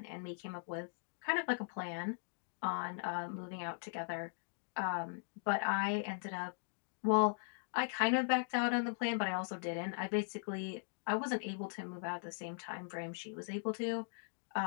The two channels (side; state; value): right; silent; digital silence